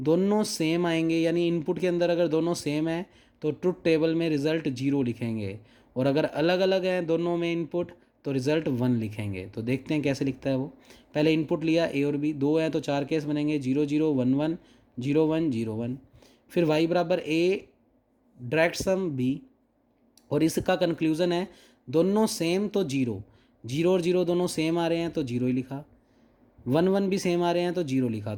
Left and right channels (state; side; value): identical; both; correlation 1.00